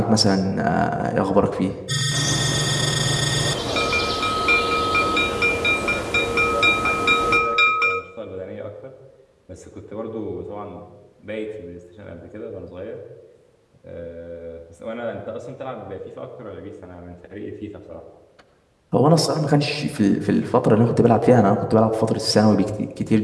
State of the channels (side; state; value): both; identical; correlation 1.00